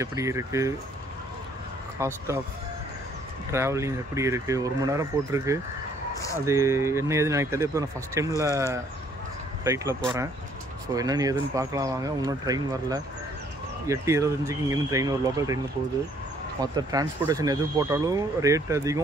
எப்படி இருக்குது, காஸ்ட் ஆஃப் ட்ராவலிங் எப்படி இருக்குது, 1 மணி நேரம் போட்டிருக்கு. அது என்ன ஏதுன்னு எனக்கு தெரியல. இப்போ நான் ஃபஸ்ட் டைமில் ஃப்ளைட்டில் போகிறேன். ஸோ என்னென்னு ஏதுன்னு பார்க்கலாம் வாங்க. இன்னும் ட்ரெயின் வரல. 8:25க்கு இங்கேருந்து ட்ரெயின் ஒரு லோக்கல் ட்ரெயினில் போகுது. மற்ற டிரான்ஸ்போர்ட்டேஷன் எது போட்டாலும் ரேட்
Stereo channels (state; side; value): normal; both; correlation 0.63